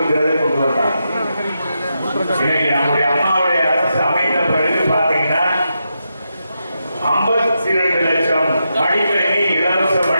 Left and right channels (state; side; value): inverted; both; correlation -0.85